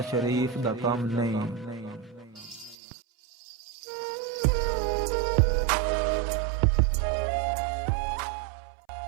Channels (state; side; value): drops out; left; at 2.8 s